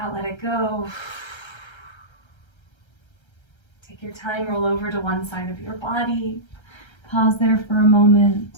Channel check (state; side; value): late; right; 1.3 ms